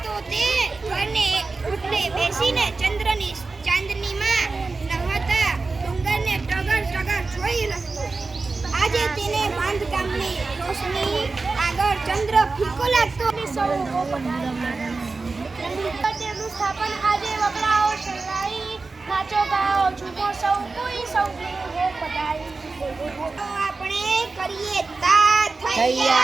તો તે ઘરને ઓટલે બેસીને ચાંદનીમાં નહાતા ડુંગરને ટગર જોઈ રહ્યો. આજે તેને બાંધકામની રોશની આગળ ચંદ્ર ફીકો લાગતો. તેનું સ્થાપન આજે વગડાઓ શરણાઈ, નાચો ગાઓ ઝૂમો સૌ કોઈ હો પધારી. તો આપણે કરીએ તા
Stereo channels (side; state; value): left; quieter; 3.9 dB